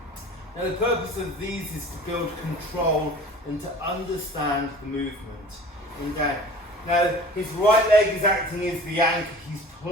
Now the purpose of these is to build control and to understand the movement. And down. Now his right leg is acting as the anchor. He's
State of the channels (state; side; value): normal; both; correlation 0.43